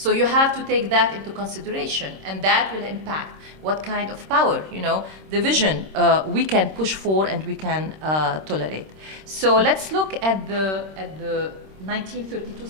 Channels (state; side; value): late; left; 26 ms